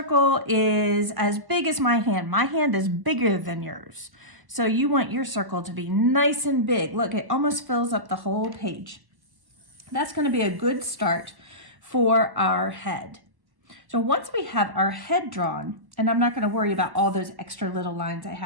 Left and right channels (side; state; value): left; late; 1.1 ms